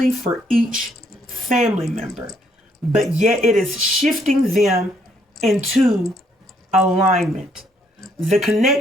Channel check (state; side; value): normal; both; correlation 0.69